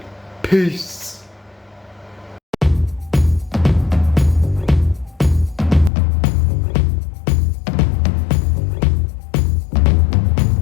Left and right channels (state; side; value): drops out; right; at 5.9 s